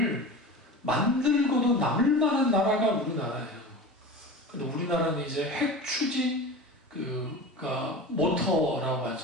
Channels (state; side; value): normal; both; correlation 0.32